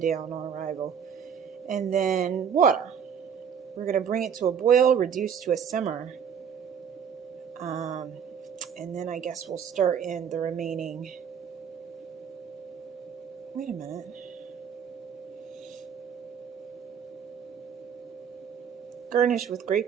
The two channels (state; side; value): quieter; left; 7.6 dB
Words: down on arrival. And then water. We're going to bring it to a boil, reduce to a simmer. And then I guess we'll start in the remaining... Wait a minute. Garnish with